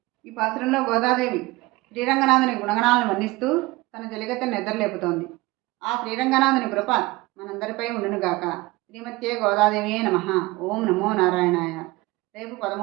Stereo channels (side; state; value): left; quieter; 21.3 dB